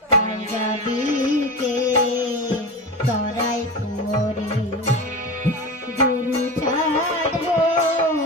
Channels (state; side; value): normal; both; correlation 0.26